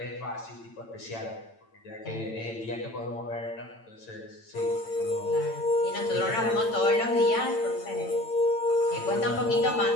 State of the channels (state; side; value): late; right; 8.9 ms